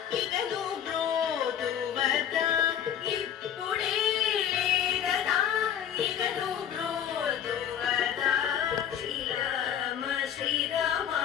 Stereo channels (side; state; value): right; quieter; 9.5 dB